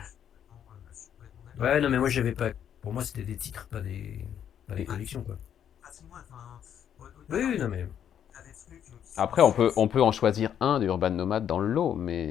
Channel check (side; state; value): right; quieter; 9.3 dB